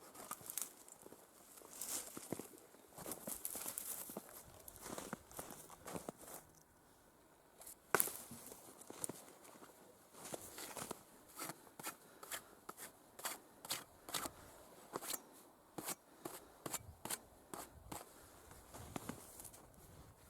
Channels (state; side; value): identical; both; correlation 1.00